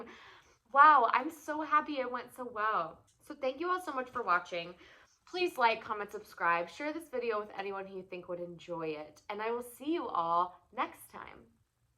Wow, I'm so happy it went so well. So thank you all so much for watching. Please like, comment, subscribe, share this video with anyone who you think would enjoy it, and I will see you all next time.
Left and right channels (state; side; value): identical; both; correlation 1.00